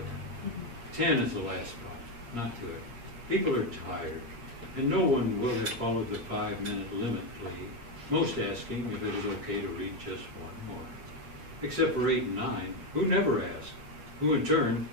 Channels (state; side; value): late; left; 8.5 ms